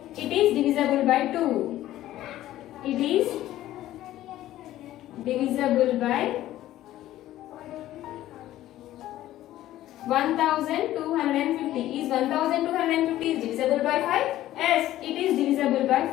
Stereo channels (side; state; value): right; quieter; 14.1 dB